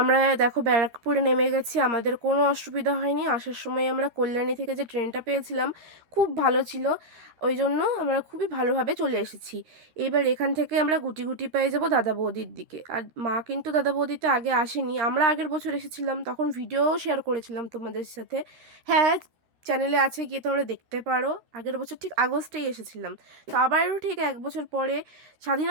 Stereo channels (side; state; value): left; late; 13 ms